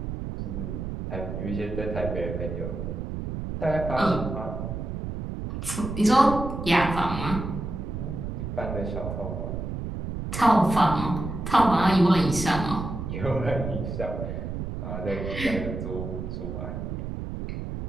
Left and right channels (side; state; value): right; noise; rumble, 5 dB below the sound